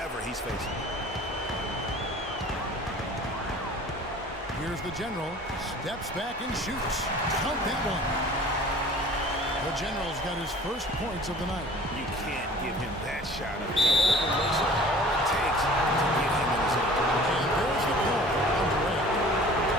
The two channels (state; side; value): normal; both; correlation 0.47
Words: he's facing. Here's the General, steps back and shoots. Count that one. The General's got his first points of the night. You can't give him that shot. All it takes to get him in his own. And there's the call on Durant.